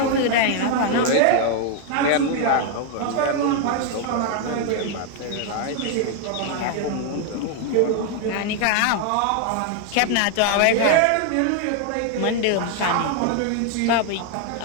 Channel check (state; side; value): different; both; correlation 0.00